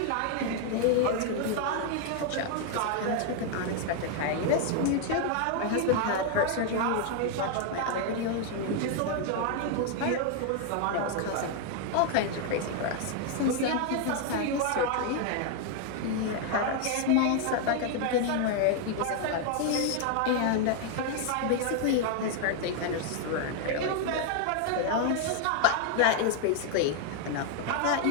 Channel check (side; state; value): both; different; correlation 0.01